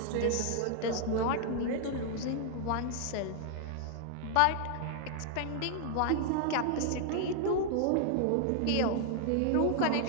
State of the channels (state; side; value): different; both; correlation 0.00